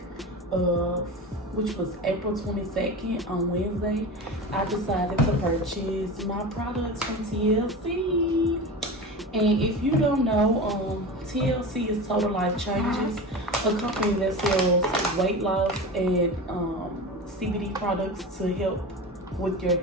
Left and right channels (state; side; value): normal; both; correlation 0.28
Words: which was April 22nd on Wednesday, I decided to purchase my products from TLC. And if you don't know, TLC is Total Life Changes, a company that sells weight loss and CBD products to help with your